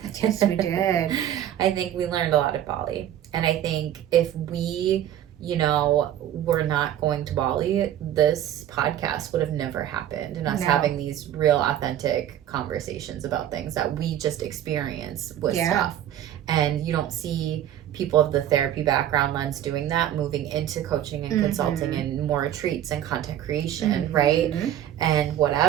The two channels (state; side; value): quieter; left; 11.3 dB